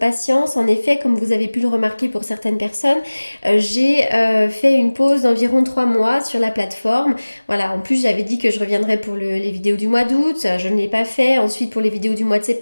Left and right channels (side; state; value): both; inverted; correlation -1.00